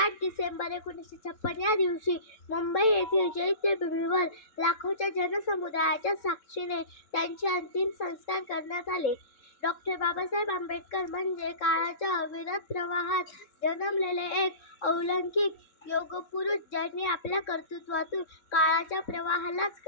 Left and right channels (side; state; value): right; late; 3.6 ms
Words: डिसेंबर 1956 या दिवशी मुंबई येथील चैत्यभूमीवर लाखोच्या जनसमुदायाच्या साक्षीने त्यांचे अंतिम संस्कार करण्यात आले. डॉ. बाबासाहेब आंबेडकर म्हणजे काळाच्या अविरत प्रवाहात जन्मलेले एक अलौकिक योगपुरुष, ज्यांनी आपल्या कर्तृत्वातून काळाच्या प्रवाहालाच